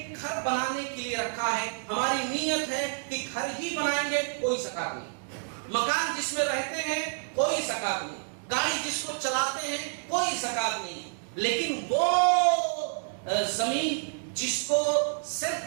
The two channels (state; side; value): silent; left; digital silence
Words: گھر بنانے کے لیے رکھا ہے، ہماری نیت ہے کہ گھر ہی بنائیں گے، کوئی زکات نہیں۔ مکان جس میں رہتے ہیں کوئی زکات نہیں، گاڑی جس کو چلاتے ہیں کوئی زکات نہیں، لیکن وہ زمین جس کو سیل